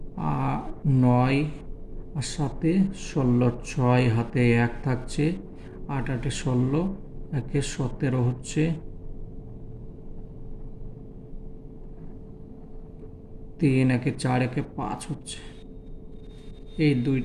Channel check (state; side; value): identical; both; correlation 1.00